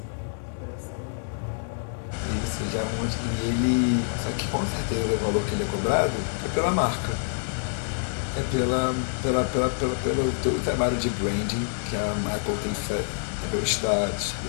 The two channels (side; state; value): right; silent; 57 dB below the other